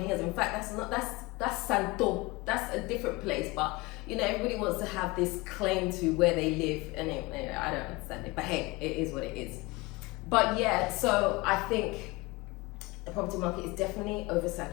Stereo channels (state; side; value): quieter; right; 23.6 dB